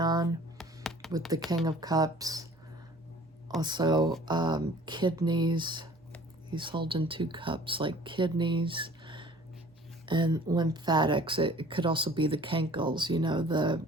with the King of Cups. Also, kidneys. He's holding 2 cups, like kidneys and lymphatics. It could also be the cankles, you know,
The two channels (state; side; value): normal; both; correlation 0.50